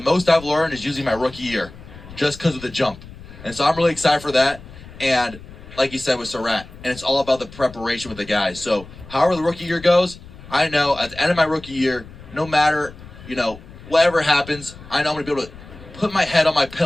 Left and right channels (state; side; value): noise; left; rumble, 18 dB below the sound